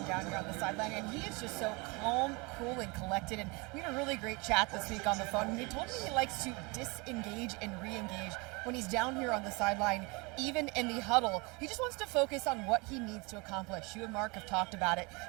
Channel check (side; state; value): left; quieter; 27.9 dB